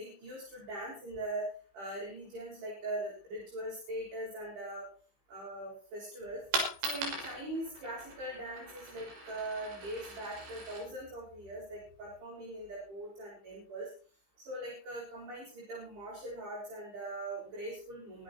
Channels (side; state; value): left; late; 15 ms